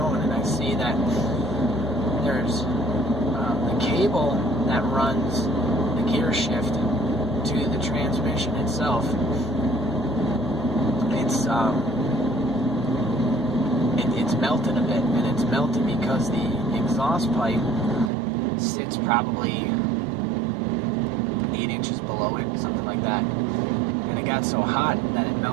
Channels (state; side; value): drops out; left; at 18.1 s